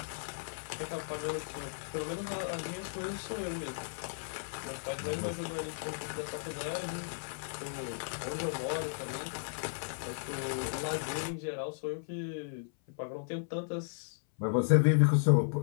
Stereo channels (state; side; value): silent; right; 54 dB below the other